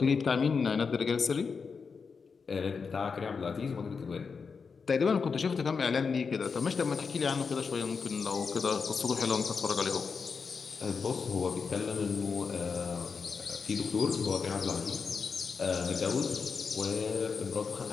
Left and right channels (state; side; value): quieter; right; 5.4 dB